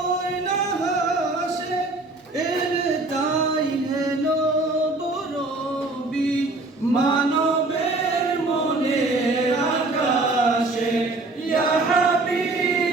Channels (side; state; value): left; quieter; 3.1 dB